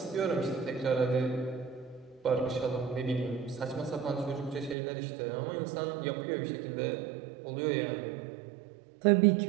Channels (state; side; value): drops out; left; at 4.8 s